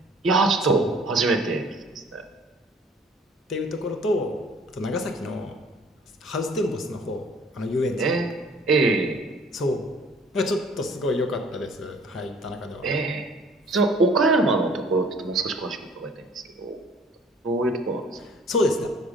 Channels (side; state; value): both; normal; correlation 0.54